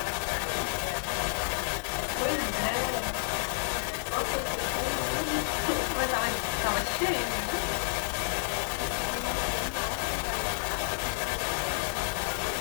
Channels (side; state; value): right; silent; 58 dB below the other